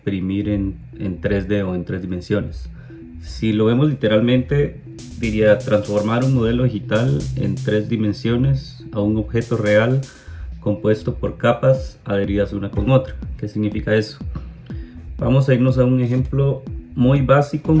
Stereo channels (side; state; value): both; identical; correlation 1.00